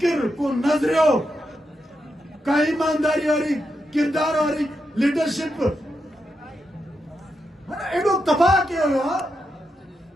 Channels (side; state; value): both; normal; correlation 0.85